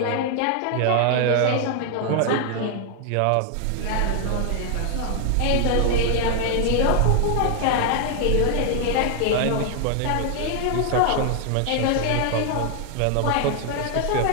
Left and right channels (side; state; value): both; different; correlation 0.00